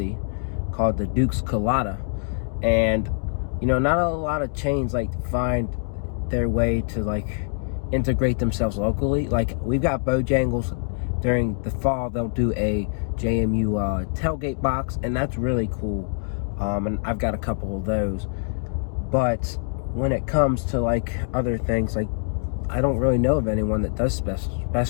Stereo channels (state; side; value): silent; right; digital silence